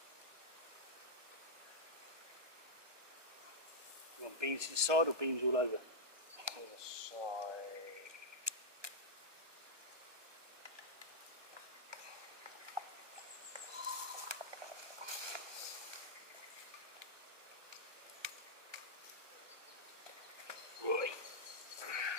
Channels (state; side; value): late; left; 1.2 ms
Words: You want beans to the side or beans all over? To the side. Right.